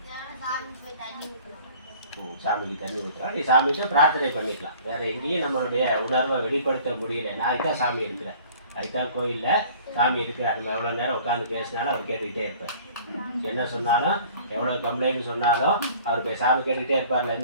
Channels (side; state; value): both; inverted; correlation -0.50